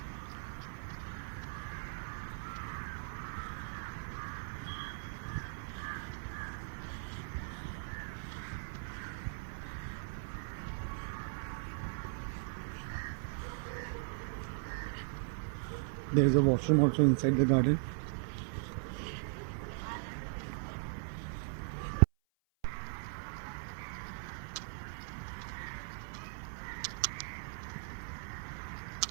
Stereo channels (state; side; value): silent; left; 52 dB below the other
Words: There is a washroom also inside the garden.